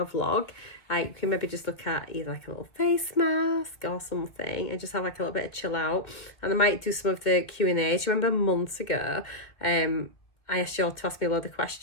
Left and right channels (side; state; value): right; late; 1.8 ms